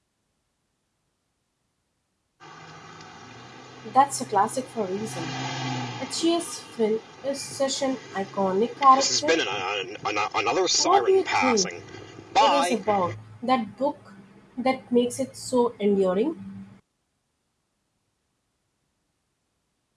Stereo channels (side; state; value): both; identical; correlation 1.00